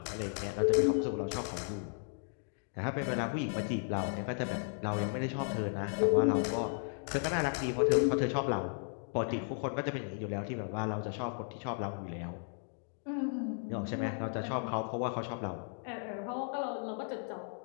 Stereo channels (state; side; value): silent; right; 54 dB below the other